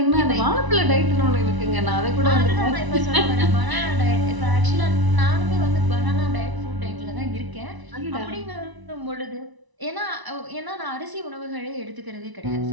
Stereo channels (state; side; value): late; left; 1.0 ms